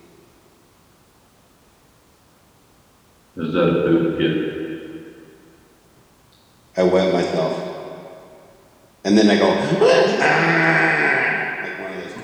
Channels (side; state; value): both; identical; correlation 1.00